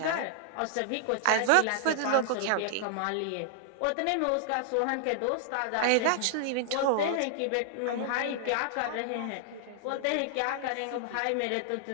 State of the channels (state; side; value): different; both; correlation -0.01